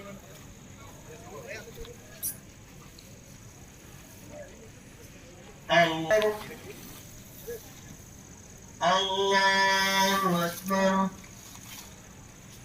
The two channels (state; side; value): identical; both; correlation 1.00